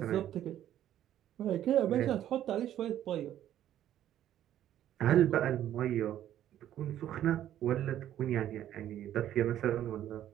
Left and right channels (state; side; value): quieter; left; 11.7 dB